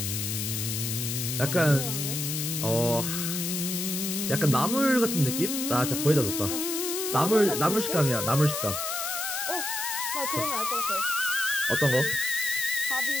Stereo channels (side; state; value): left; noise; hiss, 2 dB below the sound